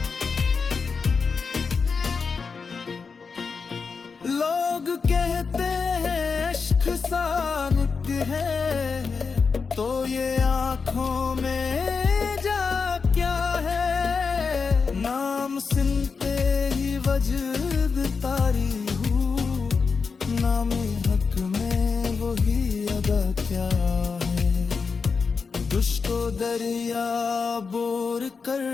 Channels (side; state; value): right; quieter; 5.1 dB